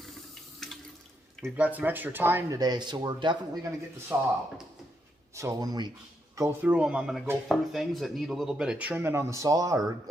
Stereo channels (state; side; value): normal; both; correlation 0.80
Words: We've got some extra time today, so we're definitely going to get the saw out. So when we go through them, I'm going to go through things that need a little bit of trimming on the saw or